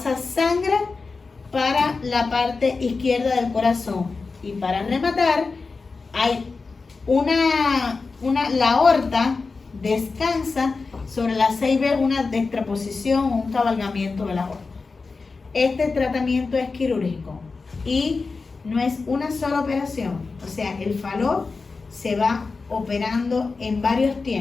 sangre para la parte izquierda del corazón. Y para rematar, hay la aorta descansa sobre la CIB, una dextroposición o un cabalgamiento de la aorta. Este tratamiento es quirúrgico y no es una sola operación, o sea, el fallo se va operando en varios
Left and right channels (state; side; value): quieter; right; 4.2 dB